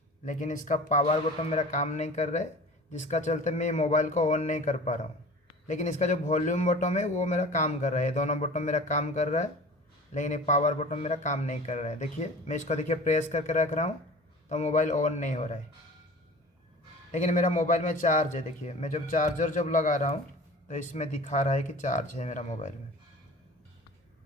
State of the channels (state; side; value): normal; both; correlation 0.41